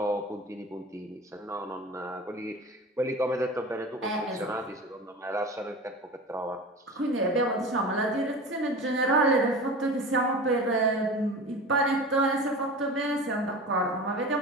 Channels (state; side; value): normal; both; correlation 0.33